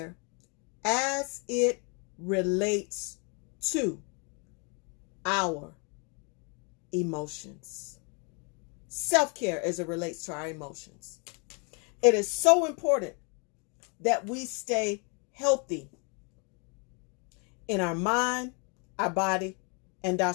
as it relates to our emotions. Self-care as it relates to our emotions. It is so important that we stay healthy in our mind, our body, and our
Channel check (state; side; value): quieter; right; 35.0 dB